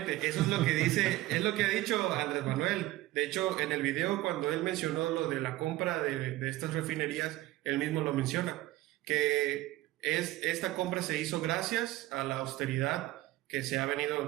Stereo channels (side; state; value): left; quieter; 17.1 dB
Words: eso es lo que dice, es lo que ha dicho Andrés Manuel. De hecho, en el video cuando él mencionó lo de la compra de estas refinerías, él mismo lo menciona, que esta compra se hizo gracias a la austeridad que se ha